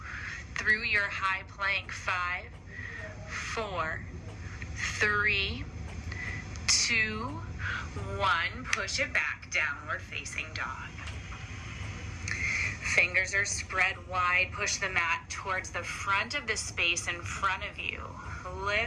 Through your high plank. 5, 4, 3, 2, 1. Push it back. Downward facing dog. Fingers are spread wide. Push the mat towards the front of the space in front of you.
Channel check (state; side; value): identical; both; correlation 1.00